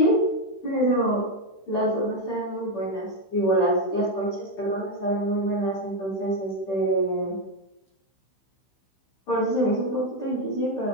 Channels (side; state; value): right; late; 15 ms